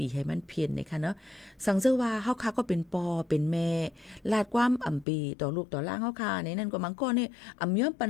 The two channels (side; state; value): right; drops out; at 5.1 s